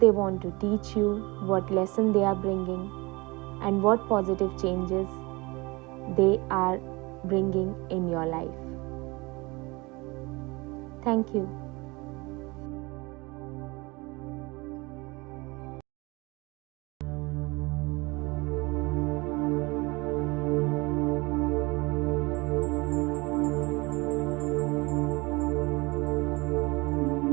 want to teach you, what lesson they are bringing, and what positive changes they are bringing in your life. Thank you.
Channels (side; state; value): left; quieter; 24.8 dB